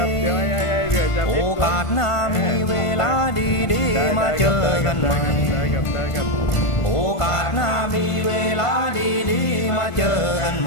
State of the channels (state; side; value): late; right; 1.5 ms